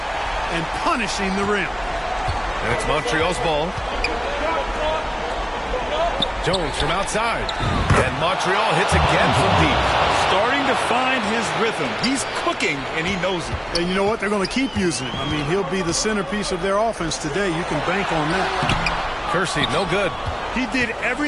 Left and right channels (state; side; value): identical; both; correlation 1.00